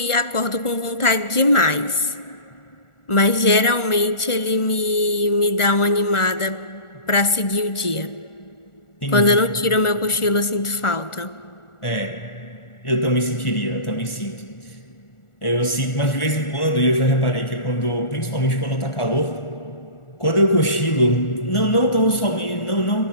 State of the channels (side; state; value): right; late; 1.4 ms